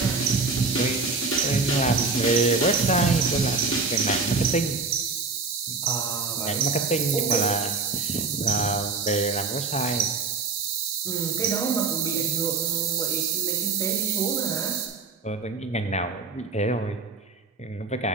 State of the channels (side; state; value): left; quieter; 4.3 dB